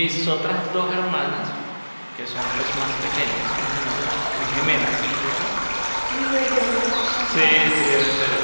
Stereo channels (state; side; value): inverted; both; correlation -1.00